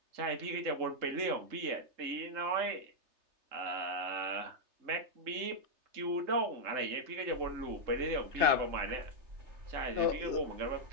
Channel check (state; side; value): late; left; 3.3 ms